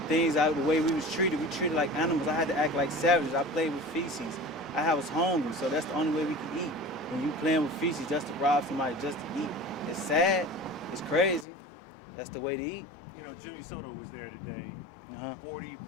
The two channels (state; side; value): drops out; right; at 11.5 s